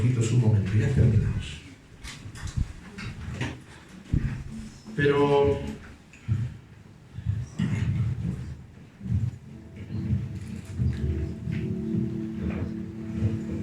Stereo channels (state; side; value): identical; both; correlation 1.00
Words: un momento. Ya terminamos. Pero